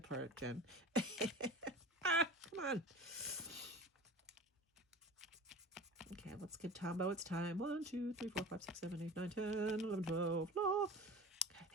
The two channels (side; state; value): both; normal; correlation 0.36